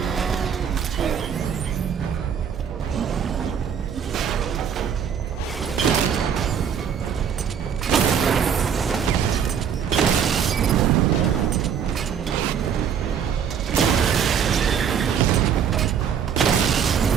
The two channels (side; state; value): left; quieter; 7.8 dB